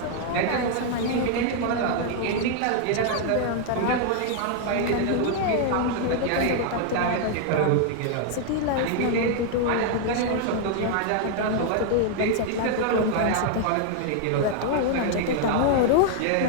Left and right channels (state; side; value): different; both; correlation 0.00